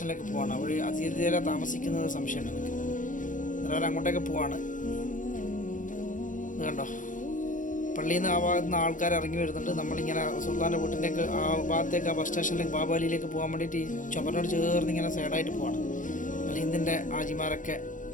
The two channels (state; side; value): late; right; 0.38 ms